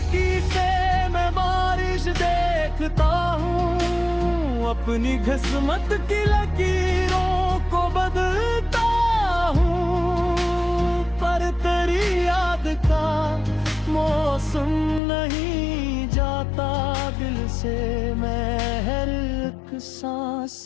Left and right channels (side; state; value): right; drops out; at 15.0 s